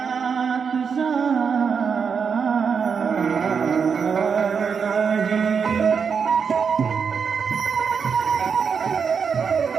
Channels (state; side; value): quieter; left; 6.2 dB